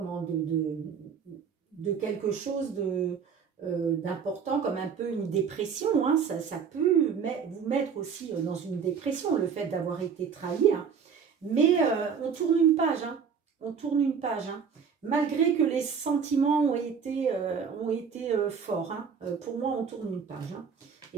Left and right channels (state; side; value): quieter; left; 6.6 dB